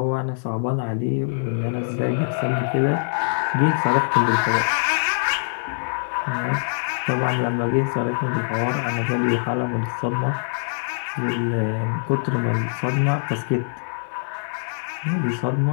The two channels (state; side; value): silent; right; digital silence